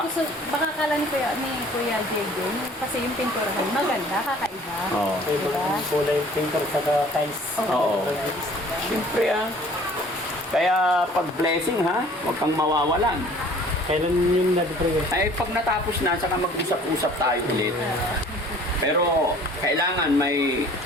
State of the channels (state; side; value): normal; both; correlation 0.52